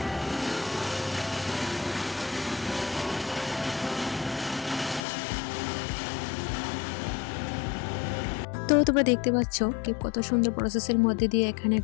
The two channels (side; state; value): right; drops out; at 5.0 s